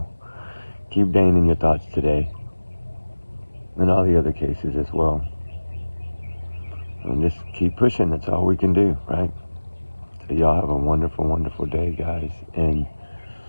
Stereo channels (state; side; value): inverted; both; correlation -1.00